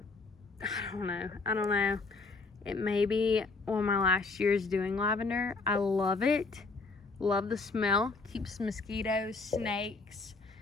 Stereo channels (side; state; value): right; quieter; 3.9 dB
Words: I don't know. It may be one of my last years doing lavender. I love it. Love the smell. Keeps mosquitoes, snakes,